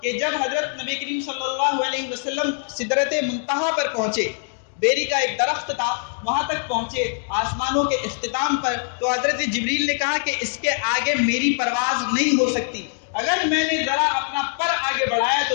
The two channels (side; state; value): right; silent; 63 dB below the other